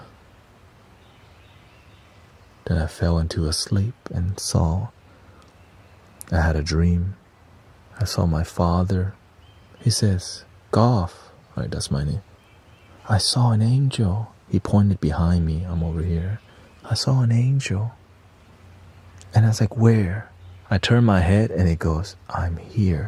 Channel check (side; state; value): both; identical; correlation 1.00